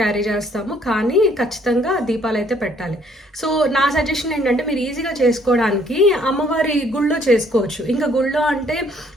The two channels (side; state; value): both; normal; correlation 0.64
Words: చేస్తాము, కానీ ఖచ్చితంగా దీపాలు అయితే పెట్టాలి. సో నా సజెషన్ ఏంటంటే మీరు ఈజీగా చేసుకోవడానికి అమ్మవారి గుళ్ళో చేసుకోవచ్చు. ఇంకా గుళ్ళో అంటే